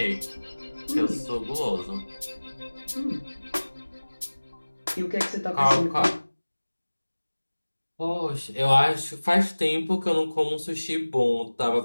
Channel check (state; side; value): inverted; both; correlation -1.00